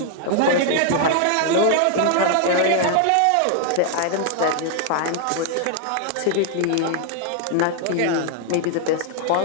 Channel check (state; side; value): different; both; correlation 0.00